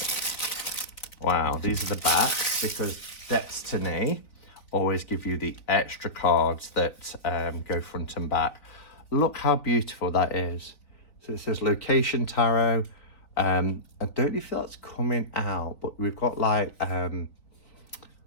Wow, these are the backs, because Deckstiny always give you the extra cards that go front and back. Look how beautiful that is. So it says Location Tarot. I don't know if that's coming out, but we've got like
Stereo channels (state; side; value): late; right; 3.8 ms